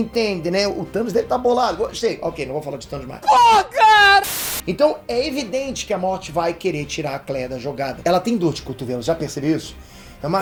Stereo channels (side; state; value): both; identical; correlation 1.00